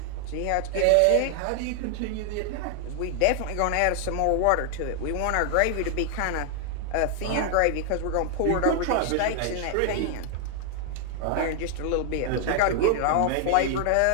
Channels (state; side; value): different; both; correlation 0.00